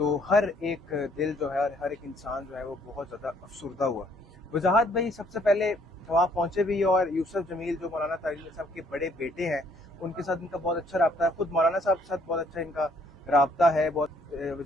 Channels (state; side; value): normal; both; correlation 0.64